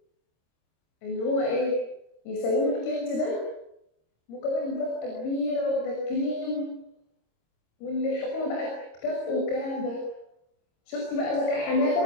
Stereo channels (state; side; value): late; right; 26 ms